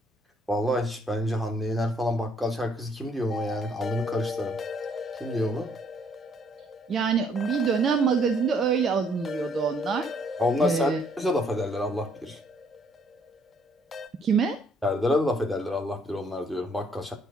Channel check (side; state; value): both; normal; correlation 0.65